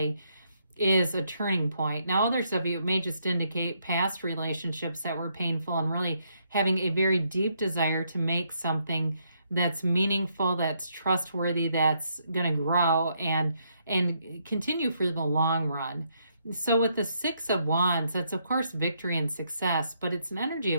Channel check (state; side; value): inverted; both; correlation -0.74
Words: is a turning point. Now, others of you, it may just indicate past relationships that were painful and really having a very deep desire to make something that's meaningful, that's trustworthy, that's going to grow and continue for the long run. So with the Six of Wands, that's of course victory and success, but it's an energy